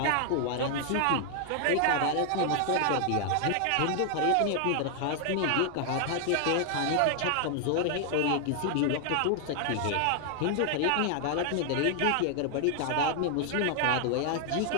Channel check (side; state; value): both; different; correlation 0.00